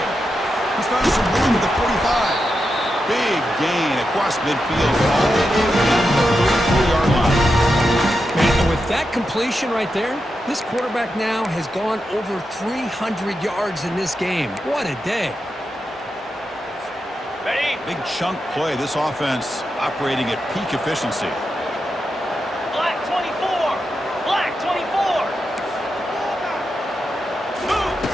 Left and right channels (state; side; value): normal; both; correlation 0.88